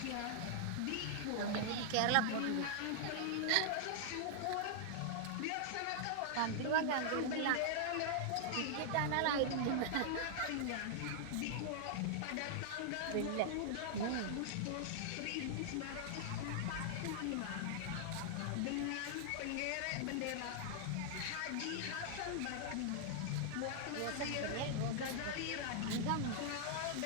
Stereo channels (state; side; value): different; both; correlation -0.01